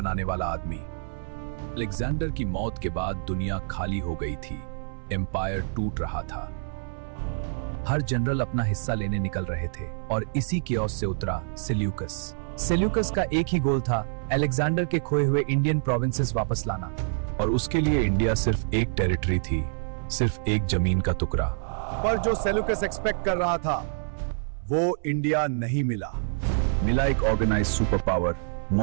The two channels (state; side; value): silent; left; 60 dB below the other